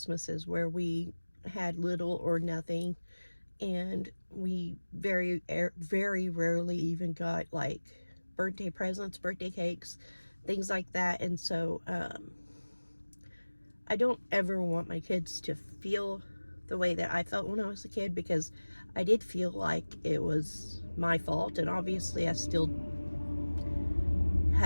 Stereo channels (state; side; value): inverted; both; correlation -1.00